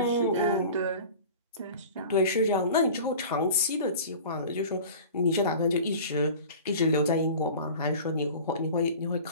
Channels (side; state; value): both; inverted; correlation -0.40